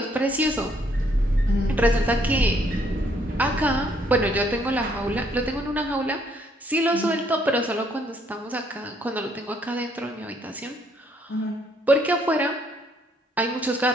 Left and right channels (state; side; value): normal; both; correlation 0.68